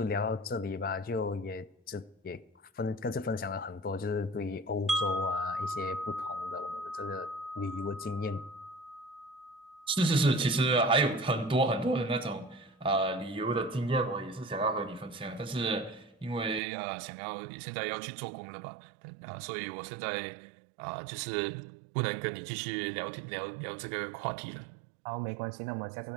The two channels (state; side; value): drops out; left; at 16.6 s